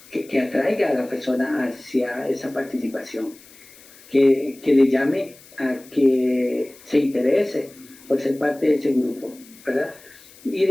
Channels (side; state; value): left; noise; hiss, 23 dB below the sound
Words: que atraiga a la persona hacia esa participación, que le llame a que se interese por ser parte de ese grupo, ¿verdad? Y